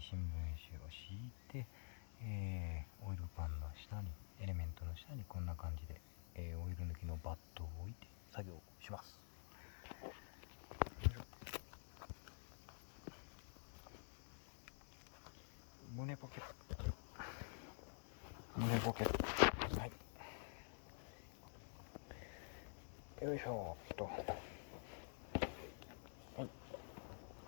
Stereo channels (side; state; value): right; silent; digital silence